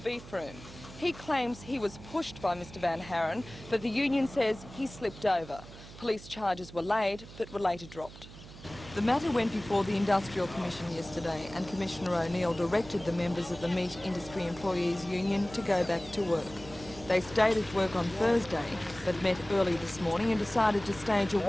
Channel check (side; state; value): right; noise; hum, 16 dB below the sound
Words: room. He claims he was pushed by Mr Van Haren, but the union says he slipped over. Police charges were laid, but were later dropped. The matter went before the Industrial Commission yesterday, and Commissioner O'Neill directed the members of the Meat Industry Employees Union to go back to work. They stayed at work on Thursday, but met early this morning and decided to stage a